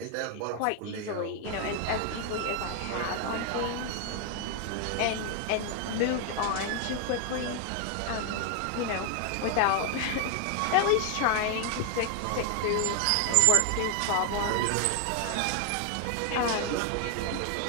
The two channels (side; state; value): both; different; correlation 0.01